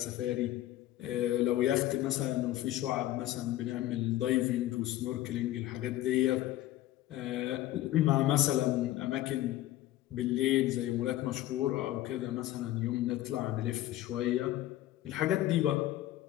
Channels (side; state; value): right; quieter; 14.7 dB